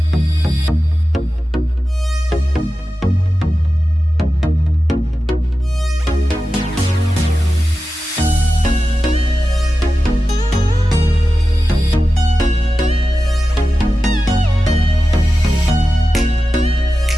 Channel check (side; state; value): both; normal; correlation 0.93